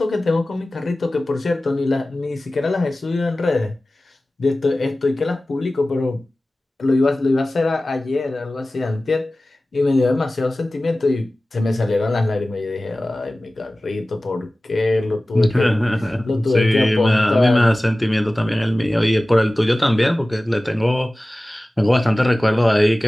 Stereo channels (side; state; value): both; normal; correlation 0.97